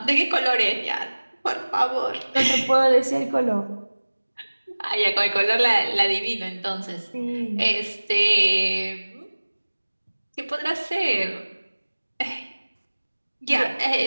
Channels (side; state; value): both; inverted; correlation -1.00